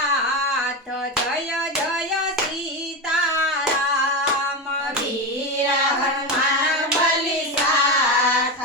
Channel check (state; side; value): normal; both; correlation 0.16